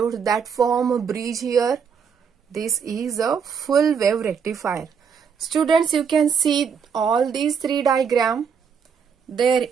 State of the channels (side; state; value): left; quieter; 6.6 dB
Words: that form a bridge here, this is a full wave rectifier. Students, you can see all these 3 diagrams, their